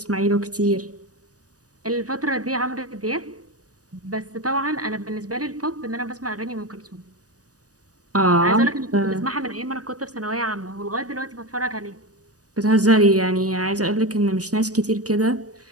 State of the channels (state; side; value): late; left; 0.67 ms